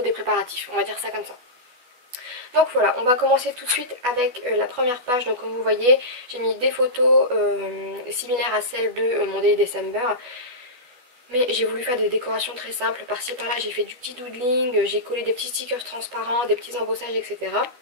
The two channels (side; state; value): left; late; 12 ms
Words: des préparatifs, on va dire ça comme ça. Donc voilà, on va commencer tout de suite avec la première page. Donc comme vous voyez, j'ai mis des photos similaires à celles de mon Daily December. Mais j'ai voulu faire des décorations très simples. Par-ci par-là, j'ai fait du petit doodling, j'ai collé des petits stickers transparents, des petits embossages, etc.